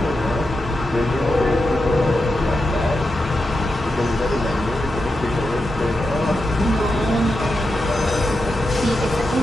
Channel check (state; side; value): normal; both; correlation 0.88